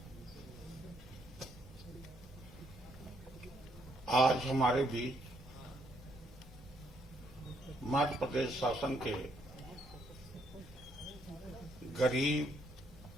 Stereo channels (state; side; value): normal; both; correlation 0.73